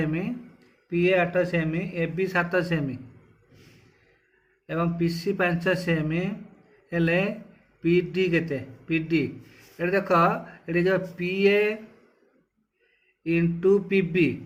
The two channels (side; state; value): both; identical; correlation 1.00